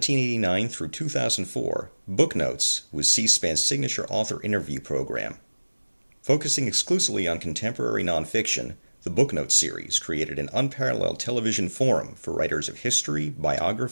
through 2004, Booknotes was C-SPAN's signature author interview program. Focusing exclusively on contemporary nonfiction, the Booknotes series created an unparalleled television forum for writers of history,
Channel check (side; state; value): both; inverted; correlation -1.00